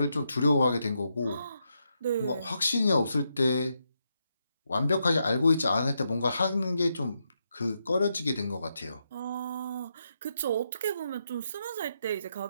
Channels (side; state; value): both; inverted; correlation -0.82